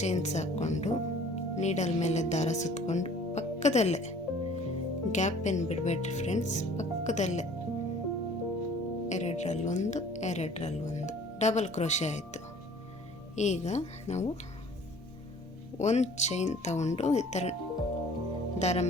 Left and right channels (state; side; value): normal; both; correlation 0.51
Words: ಚೈನ್ಸ್ ಹಾಕ್ಕೊಂಡು ನೀಡಲ್ ಮೇಲೆ ದಾರ ಸುತ್ತಕೊಂಡು ಪಕ್ಕದಲ್ಲೇ, ಗ್ಯಾಪ್ ಏನು ಬಿಡಬೇಡ್ರಿ ಫ್ರೆಂಡ್ಸ್, ಪಕ್ಕದಲ್ಲೇ ಎರಡರಲ್ಲೊಂದು ಡಬಲ್ ಕ್ರೋಶೆ ಆಯಿತು. ಈಗ ನಾವು ಒಂದು ಚೈನ್ ತಗೊಂಡು ಈ ಥರ ದಾರ